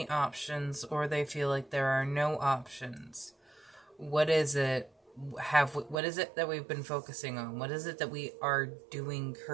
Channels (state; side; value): drops out; left; at 6.0 s